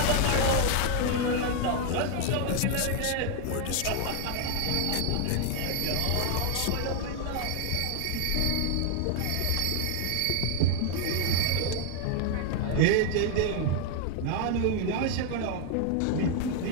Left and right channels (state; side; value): different; both; correlation 0.00